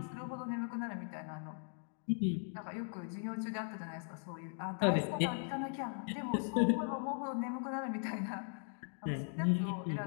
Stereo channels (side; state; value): right; silent; 52 dB below the other